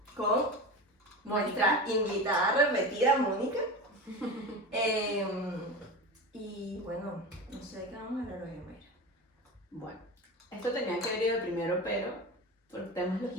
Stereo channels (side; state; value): both; normal; correlation 0.27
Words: con nuestra invitada repetida, Mónica. Y bueno, no sé de qué vamos a hablar hoy, Mayra. Bueno, esto tenía que haber ido primero, pero por temas